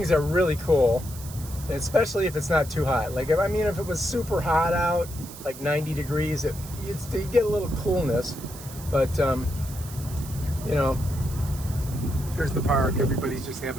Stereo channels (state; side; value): noise; right; hiss, 15 dB below the sound